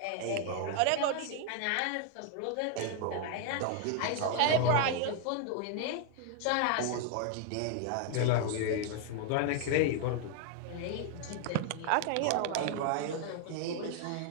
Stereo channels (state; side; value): different; both; correlation 0.00